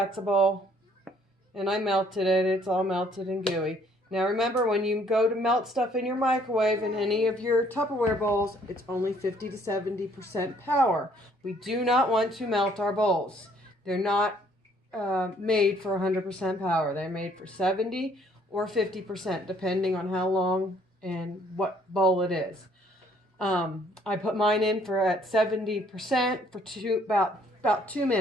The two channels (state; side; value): normal; both; correlation 0.63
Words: a bowl and I melted it. It's all melted and gooey. Now remember, when you go to melt stuff in your microwave in any of your Tupperware bowls, it's only 50 to 70% power. We do not want to melt our bowls. They're not made for 100% power. They're made for 70 or 50%, depending on how long and what bowl it is. I put mine in at 70% for about 2